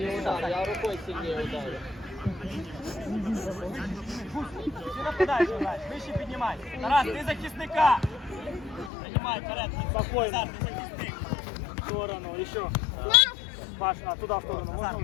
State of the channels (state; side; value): drops out; right; at 8.9 s